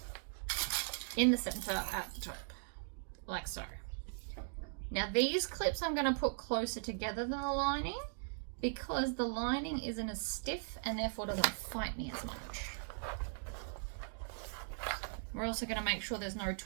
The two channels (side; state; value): left; silent; digital silence